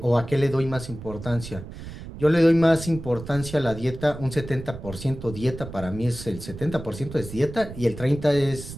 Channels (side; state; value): right; noise; rumble, 12 dB below the sound